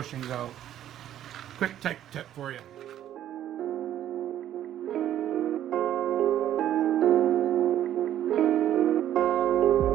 out. Quick tech tip for you.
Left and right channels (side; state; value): left; quieter; 11.5 dB